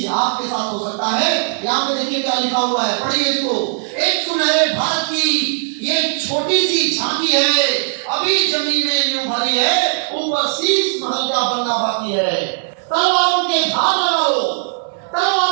आपके साथ हो सकता है। यहाँ पे देखिए क्या लिखा हुआ है, पढ़िए इसको। एक सुनहरे भारत की ये छोटी सी झांकी है, अभी जमीन में यूं भरी है, ऊपर शीश महल का बनना बाकी है। तलवारों के धार लगा लो,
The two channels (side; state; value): left; silent; digital silence